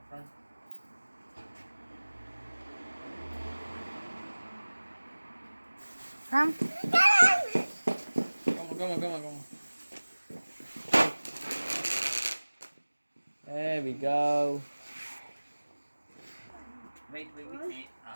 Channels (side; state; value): both; inverted; correlation -1.00